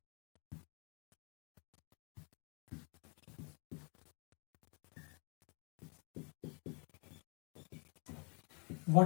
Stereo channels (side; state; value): right; quieter; 35.9 dB